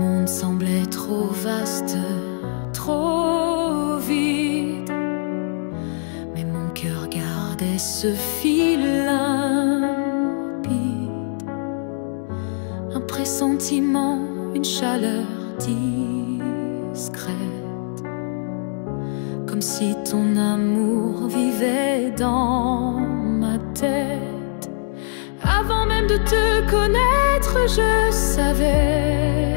semblait trop vaste, trop vide, mais mon cœur gardait ce fil limpide. Un pressentiment, une chaleur discrète, comme si ton amour vivait dans ma tête. Avant même de te connaître, je savais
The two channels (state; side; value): silent; right; digital silence